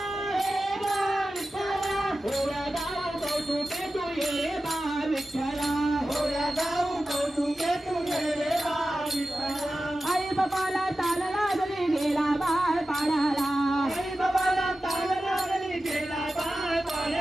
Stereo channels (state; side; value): normal; both; correlation 0.94